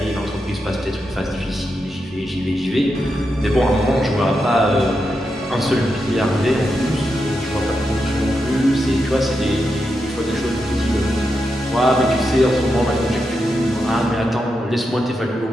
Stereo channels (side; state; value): both; normal; correlation 0.86